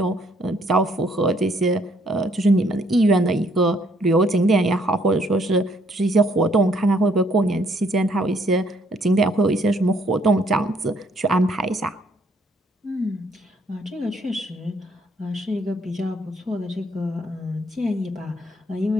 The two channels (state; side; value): normal; both; correlation 0.67